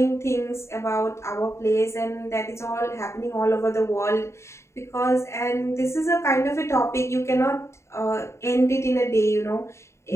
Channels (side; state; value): right; late; 0.13 ms